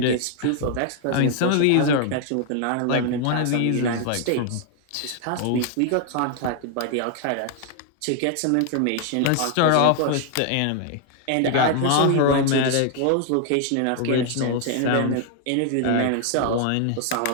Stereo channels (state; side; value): different; both; correlation 0.00